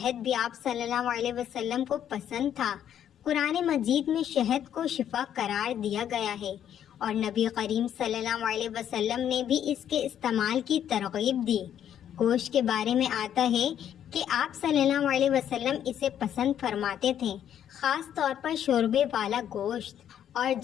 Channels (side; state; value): right; quieter; 9.9 dB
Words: بھی آپ صلی اللہ علیہ وسلم کو پسند تھا۔ قرآن مجید میں شہد کو شفا قرار دیا گیا ہے، اور نبی کریم صلی اللہ علیہ وسلم نے بھی اس کے استعمال کی ترغیب دی۔ گوشت کے بارے میں آتا ہے کہ آپ صلی اللہ علیہ وسلم اسے پسند فرماتے تھے، خاص طور پر شوربے والا گوشت، اور